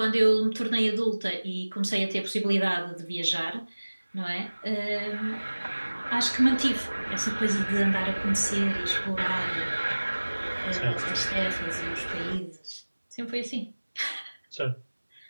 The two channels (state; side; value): inverted; both; correlation -1.00